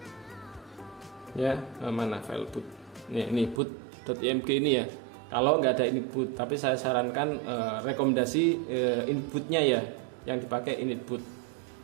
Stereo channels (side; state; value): left; drops out; at 3.6 s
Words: ya. Mana file boot? Ini boot.img ini ya. Kalau nggak ada initboot, tapi saya sarankan rekomendasi initbootnya ya, yang dipakai initboot.